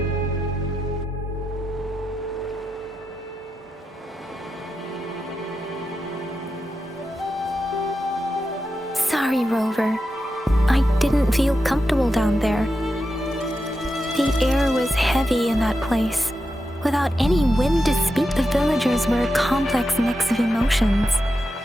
Sorry, Rover. I didn't feel comfortable down there. The air was heavy in that place. Without any wind to speak, the villagers were a complex mix of emotions.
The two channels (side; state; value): both; normal; correlation 0.88